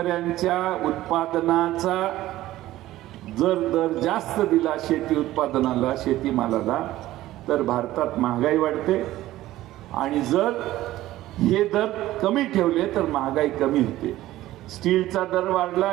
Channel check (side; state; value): left; quieter; 15.4 dB